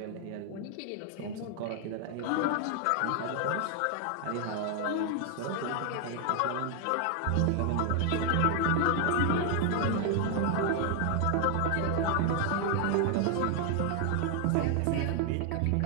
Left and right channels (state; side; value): different; both; correlation 0.00